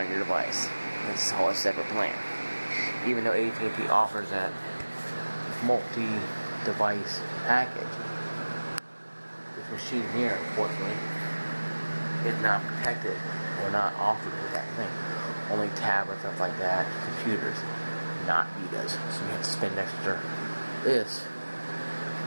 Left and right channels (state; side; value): inverted; both; correlation -1.00